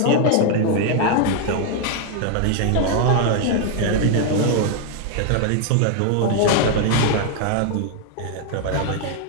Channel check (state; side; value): different; both; correlation 0.00